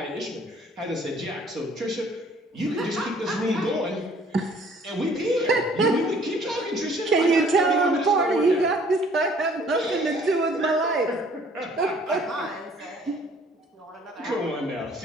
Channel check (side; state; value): both; normal; correlation 0.57